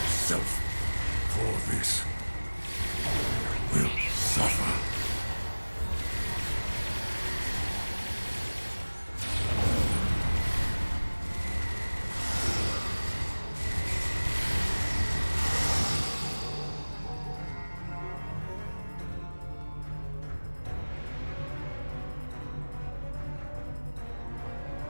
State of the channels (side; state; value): both; inverted; correlation -1.00